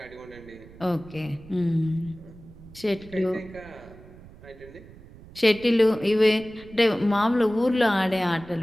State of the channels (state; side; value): noise; right; rumble, 20 dB below the sound